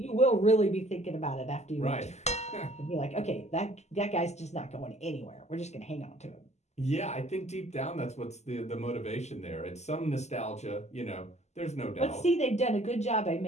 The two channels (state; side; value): late; right; 0.33 ms